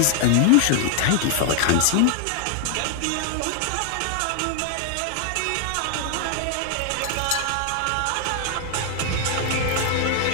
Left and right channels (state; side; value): different; both; correlation 0.00